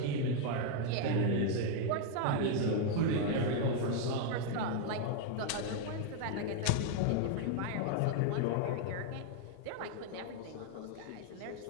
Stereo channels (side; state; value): both; different; correlation 0.00